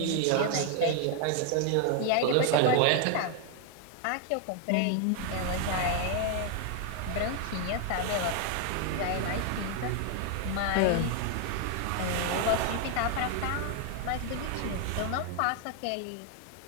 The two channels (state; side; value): different; both; correlation 0.01